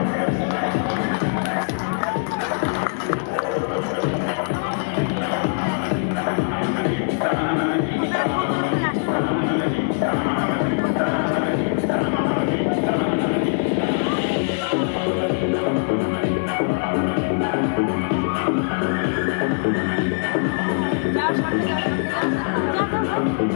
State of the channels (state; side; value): silent; right; 64 dB below the other